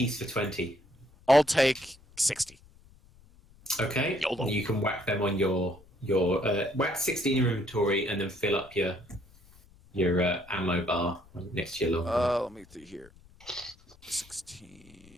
for 20. I'll take 60. Okay. YOLO. You can whack them on your whack 60 in your inventory and then fill up your ammo bar next to your longbow. Let me see here.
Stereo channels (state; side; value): noise; left; rumble, 26 dB below the sound